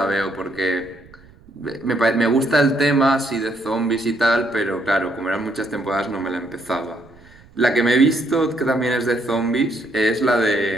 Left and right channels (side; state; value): right; noise; rumble, 25 dB below the sound